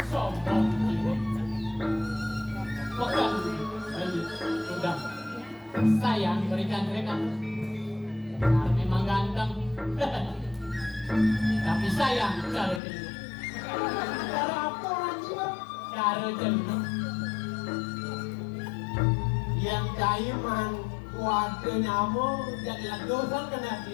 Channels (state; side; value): drops out; right; at 12.8 s